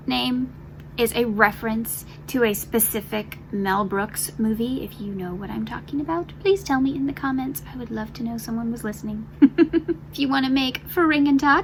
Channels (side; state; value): both; identical; correlation 1.00